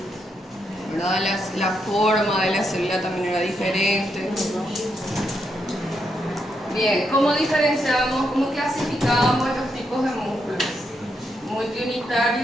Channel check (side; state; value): both; normal; correlation 0.80